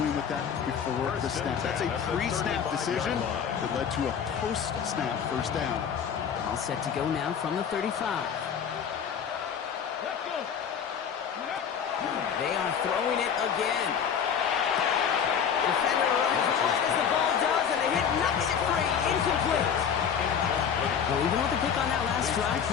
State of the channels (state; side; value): quieter; right; 7.6 dB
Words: with that before the snap. That's a pre-snap decision that led to a post-snap first down. All set to go now from the 35. They are throwing it again. Defender runs right as the ball does, and the hit knocks it free. Incomplete. Well, even with the pick on that last drive,